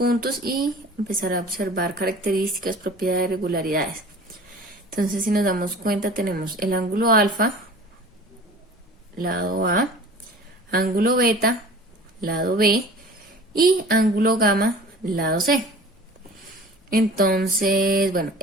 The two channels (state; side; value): normal; both; correlation 0.43